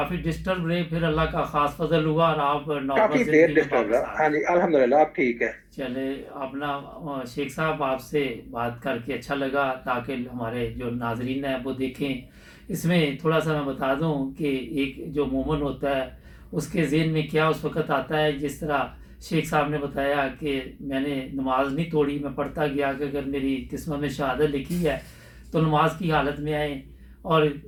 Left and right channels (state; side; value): identical; both; correlation 1.00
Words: डिस्टर्ब रहे, फिर अल्लाह का ख़ास फजल हुआ और आप नॉर्मल काफी देर ज़िंदगी में डिस्टर्ब वापस रहा। आ हाँ गए। जी, अल्हम्दुलिल्लाह अब ठीक है। चले अपना शेख साहब आपसे बात करके अच्छा लगा, ताकि हमारे जो नाजरीन हैं वो देखें। इसमें थोड़ा सा मैं बता दूं कि एक जो मोमन होता है उसके ज़हन में क्या उस वक़्त आता है, जिस तरह शेख साहब ने बताया कि मैंने नमाज नहीं तोड़ी, मैं पढ़ता गया कि अगर मेरी किस्मत में शहादत लिखी है तो नमाज की हालत में आए, और